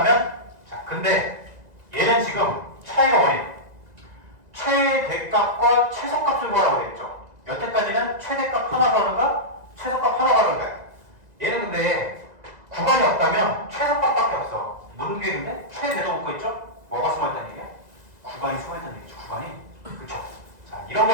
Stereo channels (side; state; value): left; late; 2.0 ms